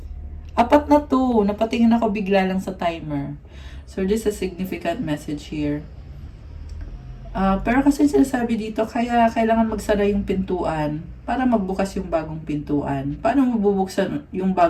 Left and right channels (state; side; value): identical; both; correlation 1.00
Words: Apat na to. Napatingin ako bigla lang sa timer. So, this is a significant message here. Pero kasi sinasabi dito, kaya kailangan magsara yung pintuan para magbukas yung bagong pintuan. Paano mabubuksan yung